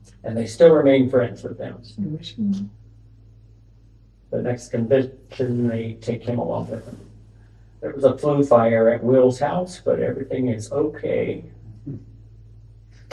And they still remain friends with them. The next convention, they take him along with them. There was a flu fire at Will's house, but everything is okay.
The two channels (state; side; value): identical; both; correlation 1.00